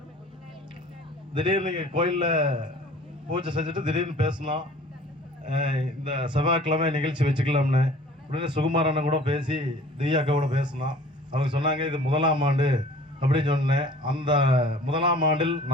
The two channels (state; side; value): normal; both; correlation 0.48